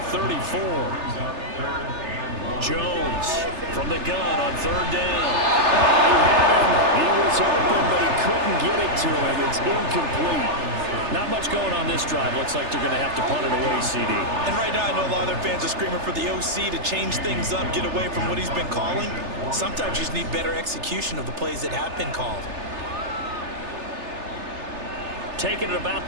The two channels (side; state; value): left; late; 3.3 ms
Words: 34. Jones from the gun on third down. He had him. He was open, but he couldn't get it to him. It's incomplete. Not much going on this drive. Looks like they're going to have to punt it away, CD. And right now, I know a lot of their fans are screaming for the OC to change things up, get away from what he's been calling. Sometimes you just need better execution of the plays that have been called. Taking it about